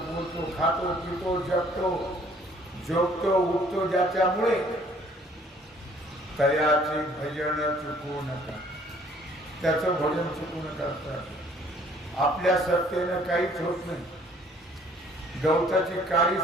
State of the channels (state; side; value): normal; both; correlation 0.58